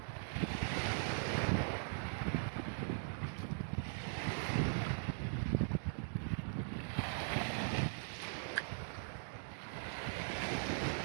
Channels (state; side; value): silent; left; digital silence